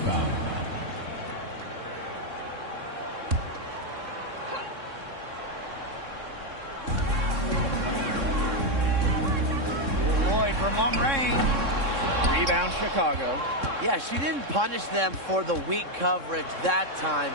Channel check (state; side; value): late; left; 3.6 ms